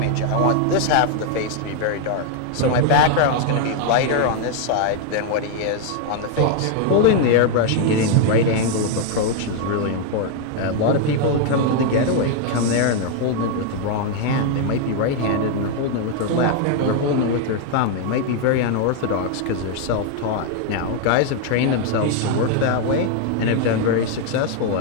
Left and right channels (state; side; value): different; both; correlation 0.00